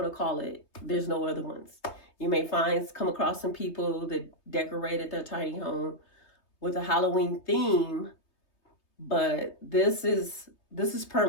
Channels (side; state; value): right; late; 3.2 ms